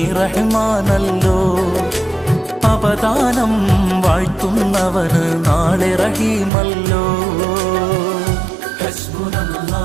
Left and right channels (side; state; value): left; drops out; at 6.5 s